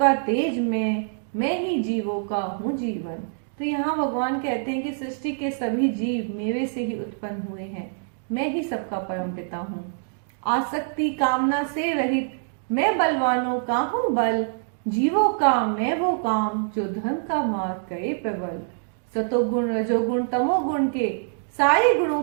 तेज मैं ही जीवों का हूँ जीवन। तो यहाँ भगवान कहते हैं कि सृष्टि के सभी जीव मेरे से ही उत्पन्न हुए हैं। मैं ही सबका परम पिता हूँ। आसक्ति कामना से रहित मैं बलवानों का हूँ बल। जीवों का मैं वो काम जो धर्म का मार्ग करे प्रबल। सतोगुण, रजोगुण, तमोगुण के सारे गुणों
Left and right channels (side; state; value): left; silent; digital silence